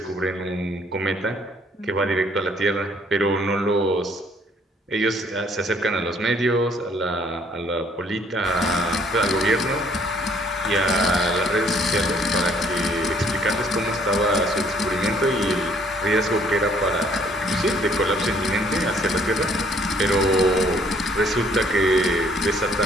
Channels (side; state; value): both; normal; correlation 0.62